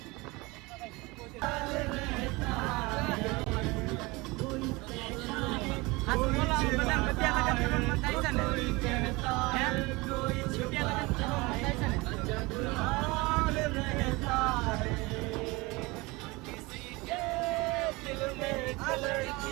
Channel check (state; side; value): quieter; left; 23.6 dB